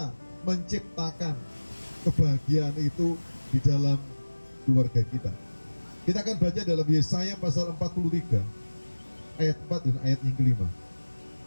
menciptakan kebahagiaan itu di dalam keluarga kita. Kita akan baca dalam Yesaya pasal 43 ayat 4 dan ayat yang kelima.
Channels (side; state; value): both; inverted; correlation -1.00